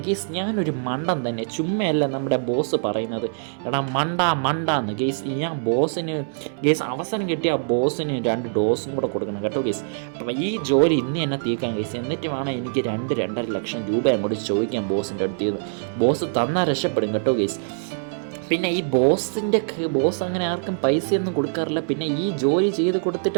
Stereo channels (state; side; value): silent; left; 60 dB below the other